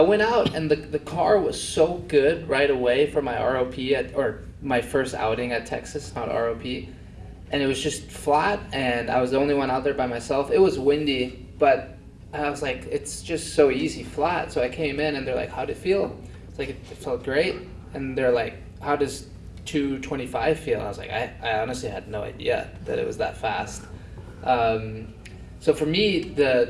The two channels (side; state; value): both; identical; correlation 1.00